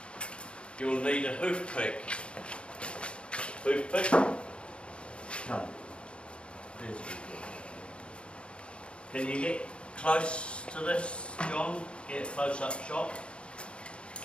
You'll need a hoof pick. Hoof pick? Come. There's the hoof. Can you get close to this, John? Get a close-up shot.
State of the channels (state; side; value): late; right; 0.057 ms